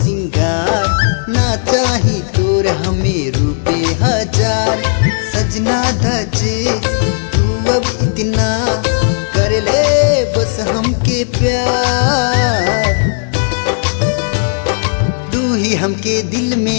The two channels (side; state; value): right; silent; digital silence